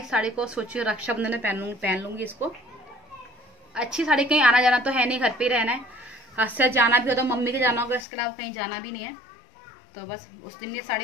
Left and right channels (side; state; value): right; drops out; at 8.1 s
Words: इस साड़ी को सोची रक्षाबंधन में पहन लूंगी इसको। अच्छी साड़ी, कहीं आना जाना तो है नहीं, घर पे ही रहना है, आज से जाना भी हो तो मम्मी के जाना होगा, इसके अलावा कहीं जाना भी नहीं है। तो बस उस दिन ये